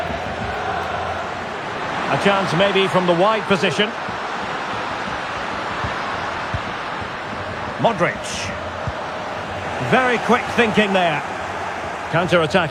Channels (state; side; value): identical; both; correlation 1.00